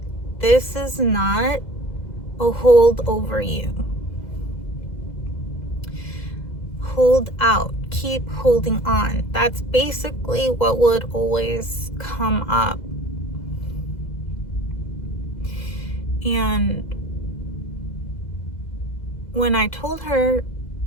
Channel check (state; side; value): late; right; 2.0 ms